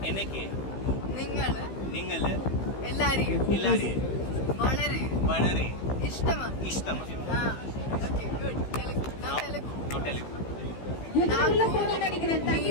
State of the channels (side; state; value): right; late; 15 ms